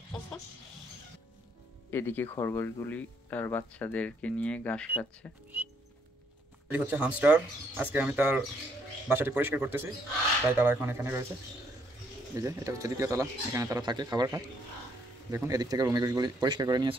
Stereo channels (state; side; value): normal; both; correlation 0.70